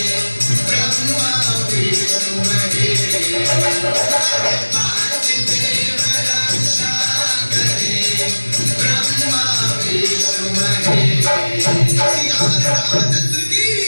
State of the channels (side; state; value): both; inverted; correlation -1.00